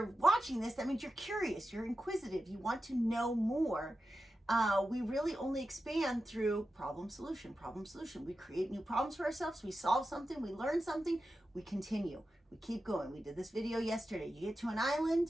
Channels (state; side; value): normal; both; correlation 0.91